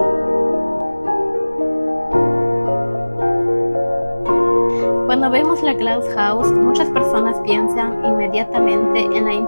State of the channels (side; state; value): both; inverted; correlation -1.00